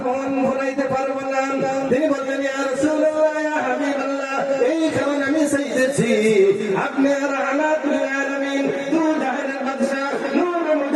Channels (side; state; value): both; identical; correlation 1.00